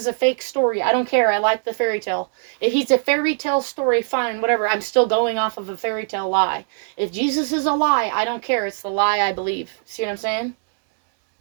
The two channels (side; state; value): left; silent; 65 dB below the other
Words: a fake story. I don't care. I like the fairy tale. If he's a fairy tale story, fine, whatever. I'm still going off of a fairy tale lie. If Jesus is a lie, I don't care. It's the lie I believe. See what I'm saying?